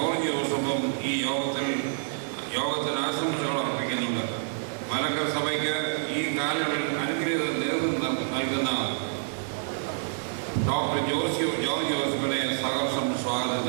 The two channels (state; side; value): silent; left; 60 dB below the other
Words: ജോസഫും ഈ യോഗത്തിന് ആശംസകൾ അർപ്പിക്കുന്നുണ്ട്. മലങ്കര സഭയ്ക്ക് ഈ കാലയളവിൽ അനുഗ്രഹീത നേതൃത്വം നൽകുന്ന ഡോക്ടർ ജോർജ് ജോസഫിനെ സഹർഷം സ്വാഗതം